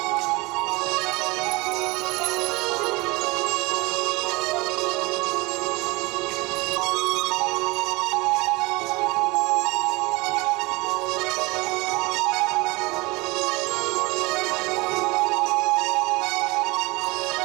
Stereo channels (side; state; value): left; quieter; 23.7 dB